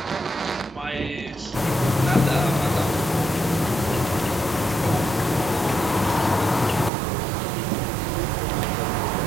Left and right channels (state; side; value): drops out; left; at 6.9 s